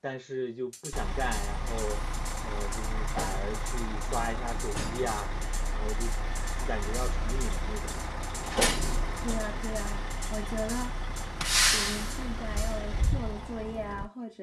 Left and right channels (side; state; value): both; identical; correlation 1.00